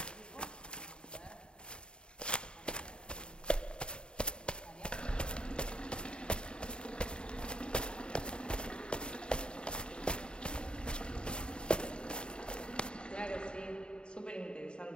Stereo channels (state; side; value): late; right; 0.051 ms